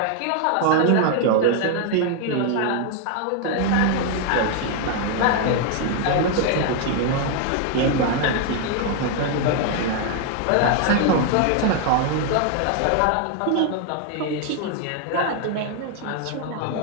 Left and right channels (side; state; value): both; different; correlation 0.00